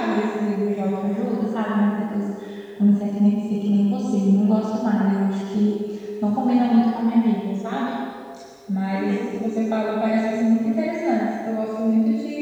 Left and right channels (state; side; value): identical; both; correlation 1.00